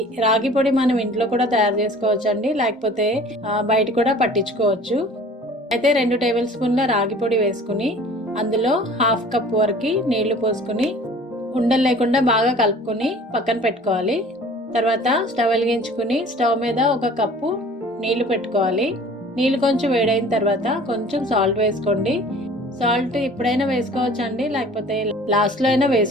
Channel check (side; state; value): both; normal; correlation 0.47